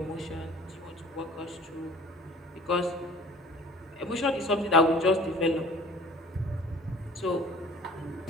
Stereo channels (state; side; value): normal; both; correlation 0.48